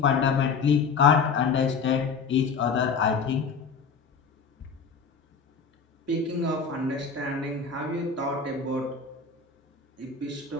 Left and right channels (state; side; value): quieter; right; 5.4 dB